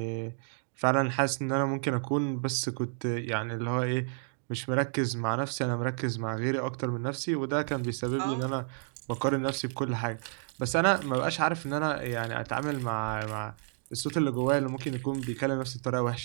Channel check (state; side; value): silent; left; digital silence